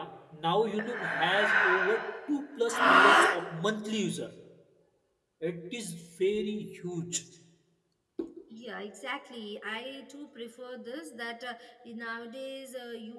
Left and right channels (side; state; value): both; identical; correlation 1.00